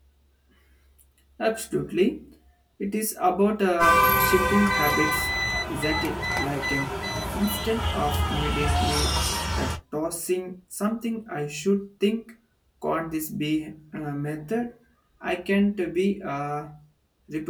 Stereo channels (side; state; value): both; identical; correlation 1.00